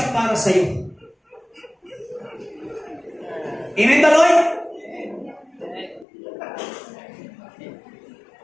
para sa iyo. Amen ba, Lord?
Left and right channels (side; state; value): right; drops out; at 6.1 s